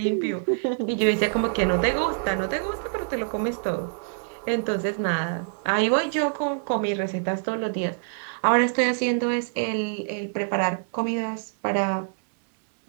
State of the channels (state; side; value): silent; left; digital silence